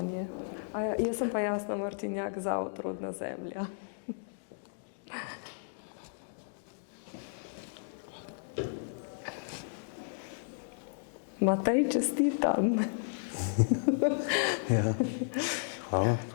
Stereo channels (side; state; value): right; silent; digital silence